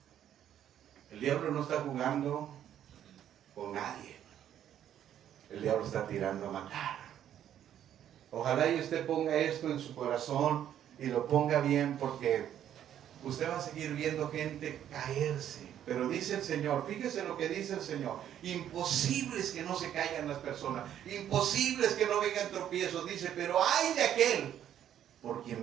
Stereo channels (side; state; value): left; quieter; 10.5 dB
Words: El diablo no está jugando con nadie. El diablo está tirando a matar. Ojalá y usted ponga esto en su corazón y lo ponga bien, porque usted va a seguir viendo gente caerse. Pero dice el Señor, fíjese lo que dice el Señor: imposible es que no se caigan las personas, imposible es que no vengan tropiezos. Dice, pero ay de aquel por